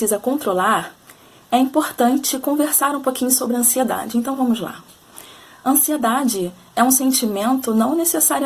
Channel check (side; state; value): both; identical; correlation 1.00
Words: controlar, é importante conversar um pouquinho sobre a ansiedade. Então vamos lá. Ansiedade é um sentimento não